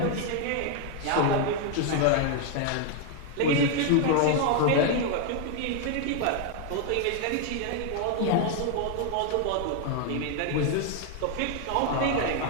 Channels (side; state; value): both; different; correlation 0.00